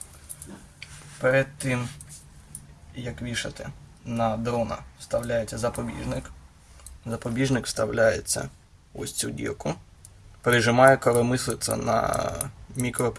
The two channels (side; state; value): both; identical; correlation 1.00